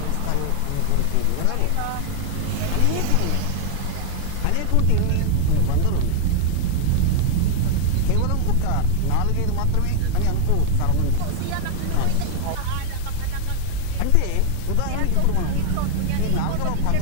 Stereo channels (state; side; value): different; both; correlation 0.00